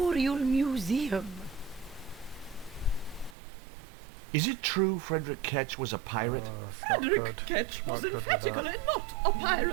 Museum. Is it true Frederick Ketch was a pirate? Oh, it's not Frederick good. Ketch Not was good with emphatically that. not a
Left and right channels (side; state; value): left; drops out; at 3.4 s